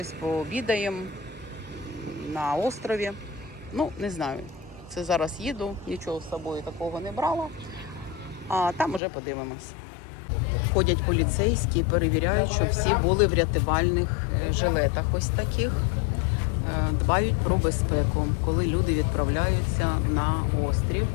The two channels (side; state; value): right; drops out; at 9.0 s